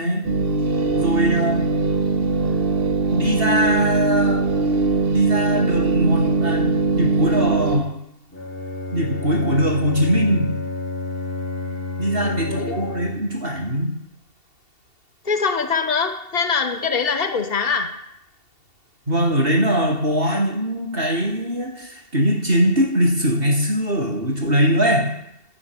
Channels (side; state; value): left; late; 2.7 ms